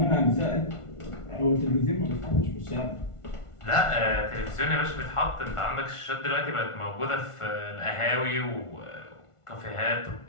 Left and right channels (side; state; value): right; late; 1.5 ms